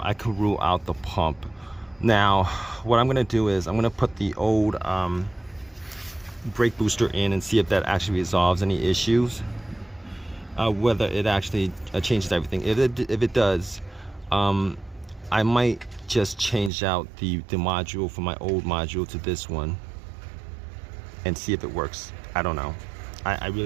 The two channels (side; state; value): left; drops out; at 16.7 s